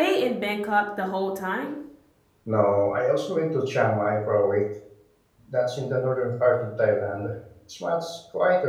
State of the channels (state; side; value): identical; both; correlation 1.00